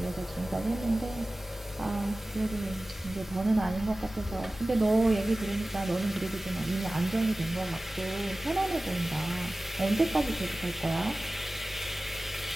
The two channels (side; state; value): both; normal; correlation 0.97